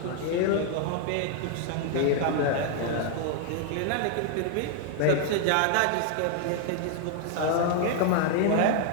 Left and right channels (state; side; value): different; both; correlation 0.00